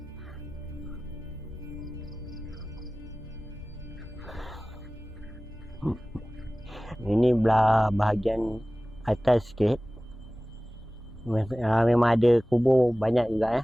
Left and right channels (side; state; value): both; normal; correlation 0.98